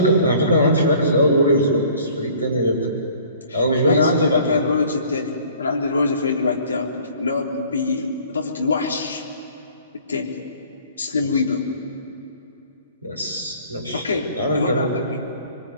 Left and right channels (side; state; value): both; inverted; correlation -0.53